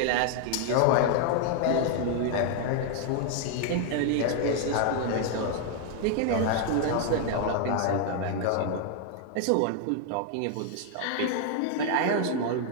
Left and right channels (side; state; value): both; different; correlation 0.00